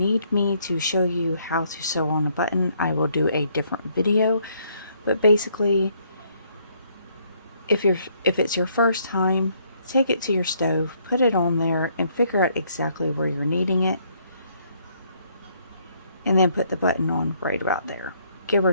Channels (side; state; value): both; inverted; correlation -0.68